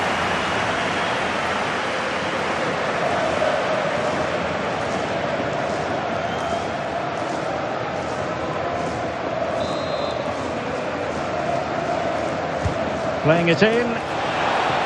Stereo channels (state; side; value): identical; both; correlation 1.00